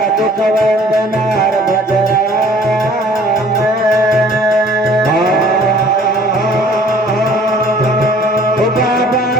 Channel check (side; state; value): both; normal; correlation 0.54